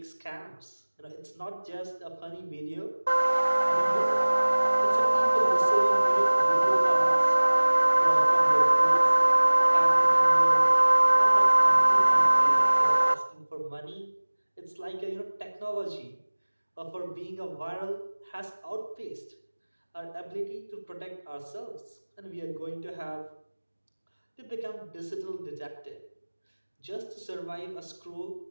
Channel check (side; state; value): both; inverted; correlation -1.00